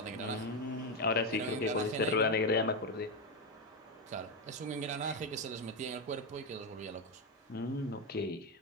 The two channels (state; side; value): normal; both; correlation 0.09